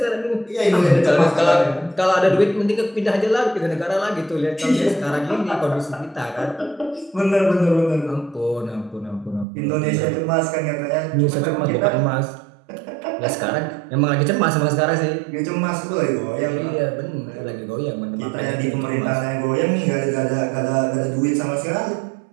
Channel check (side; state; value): left; drops out; at 9.5 s